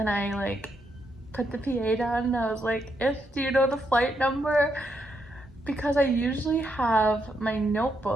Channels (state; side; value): normal; both; correlation 0.79